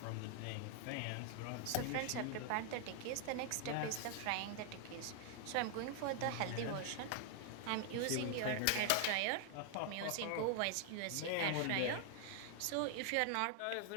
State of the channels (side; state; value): both; different; correlation 0.00